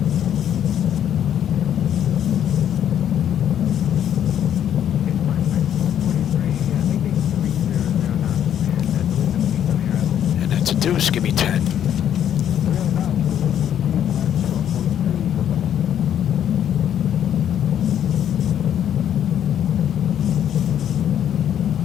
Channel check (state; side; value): quieter; right; 9.9 dB